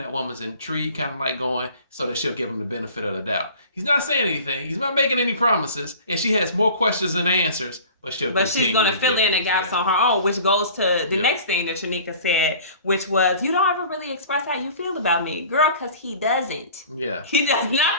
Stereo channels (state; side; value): inverted; both; correlation -0.44